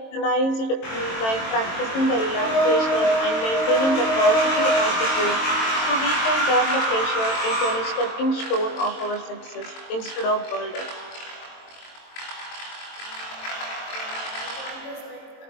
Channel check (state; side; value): late; right; 22 ms